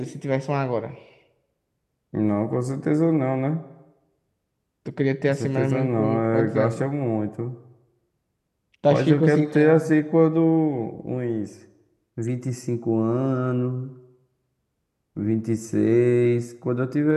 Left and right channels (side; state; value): both; identical; correlation 1.00